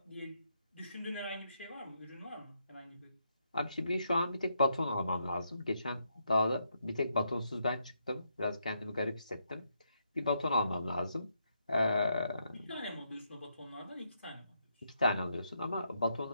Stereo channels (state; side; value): inverted; both; correlation -0.79